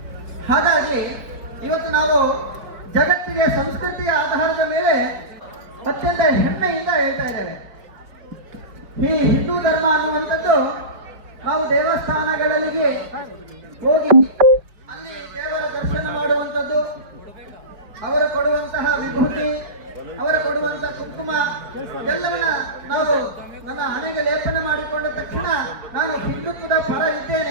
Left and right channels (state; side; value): late; left; 5.1 ms